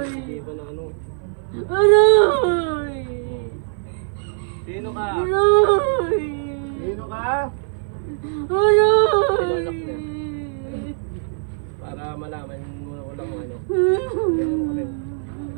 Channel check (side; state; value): left; silent; 60 dB below the other